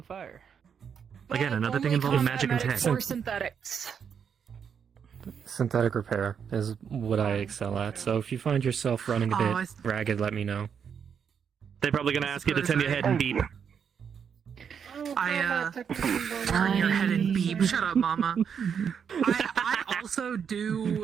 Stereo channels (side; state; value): left; quieter; 7.3 dB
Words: fire. Again, another thing Only involving combat magic and tech. medics or synthetics. Synthetic repair is what I excel at, so if you find yourself running a Oh, bit ragged, let me know. They're probably gonna ask you to turn your head and beep. Turn your head and beep. Shut up, mama. I also